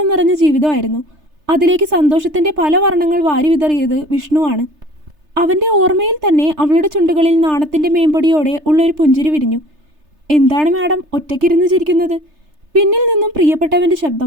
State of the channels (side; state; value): left; late; 3.3 ms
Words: നിറഞ്ഞ ജീവിതമായിരുന്നു. അതിലേക്ക് സന്തോഷത്തിൻ്റെ പല വർണ്ണങ്ങൾ വാരി വിതറിയത് വിഷ്ണുവാണ്. അവൻ്റെ ഓർമ്മയിൽ തന്നെ അവളുടെ ചുണ്ടുകളിൽ നാണത്തിൻ്റെ മേമ്പൊടിയോടെ ഉള്ളൊരു പുഞ്ചിരി വിരിഞ്ഞു. എന്താണ് മാഡം ഒറ്റയ്ക്കിരുന്ന് ചിരിക്കുന്നത്? പിന്നിൽ നിന്നും പ്രിയപ്പെട്ടവൻ്റെ